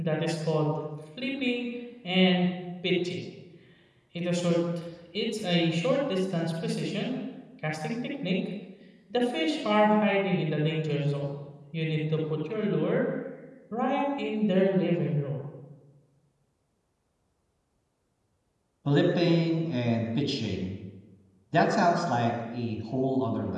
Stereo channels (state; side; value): identical; both; correlation 1.00